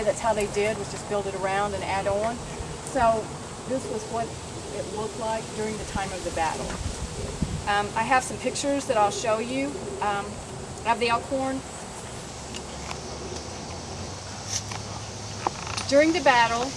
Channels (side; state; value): both; identical; correlation 1.00